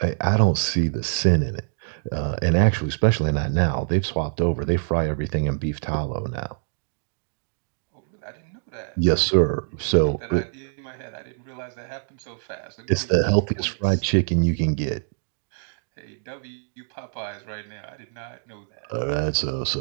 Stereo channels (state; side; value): silent; left; digital silence